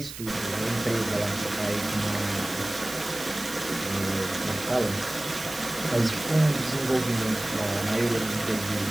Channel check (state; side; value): noise; right; hiss, 11 dB below the sound